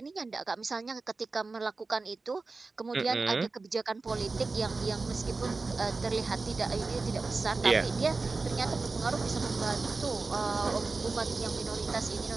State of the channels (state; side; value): quieter; left; 3.8 dB